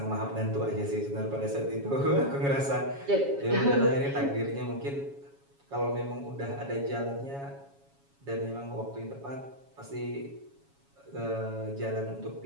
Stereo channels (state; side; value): late; left; 7.2 ms